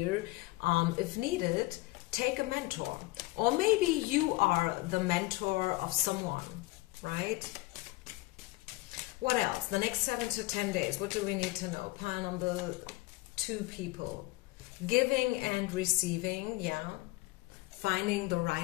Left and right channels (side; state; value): right; quieter; 20.6 dB